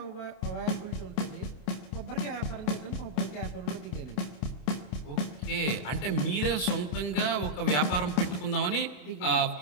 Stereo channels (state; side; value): late; right; 27 ms